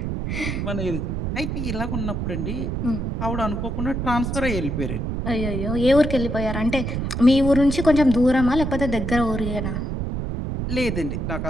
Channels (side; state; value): right; noise; rumble, 2 dB below the sound